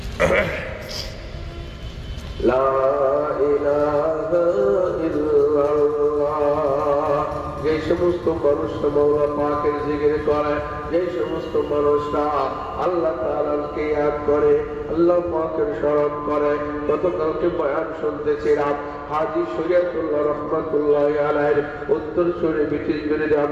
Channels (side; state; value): both; identical; correlation 1.00